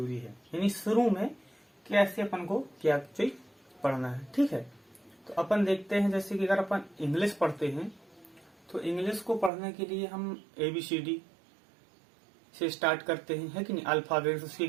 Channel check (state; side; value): drops out; left; at 9.5 s